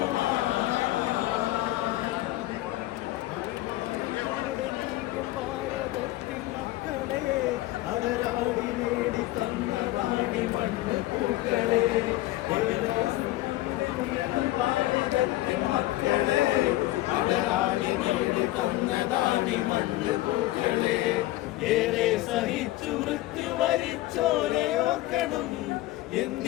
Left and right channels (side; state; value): right; quieter; 17.0 dB